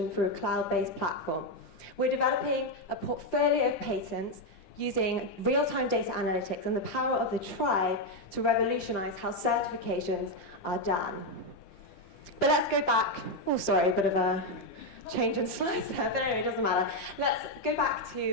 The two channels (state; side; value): late; right; 10 ms